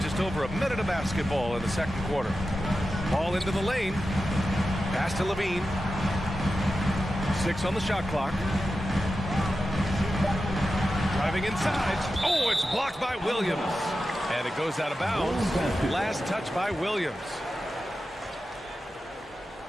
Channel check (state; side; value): normal; both; correlation 0.92